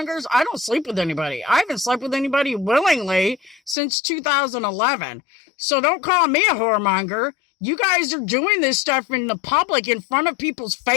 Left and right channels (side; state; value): right; drops out; at 3.8 s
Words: I don't sleep with anybody. I haven't slept with anybody willingly since 2011. So don't call me a whoremonger. You guys are doing this stuff in the public in front of people's